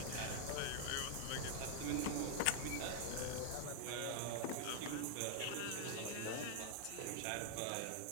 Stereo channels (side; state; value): both; different; correlation 0.00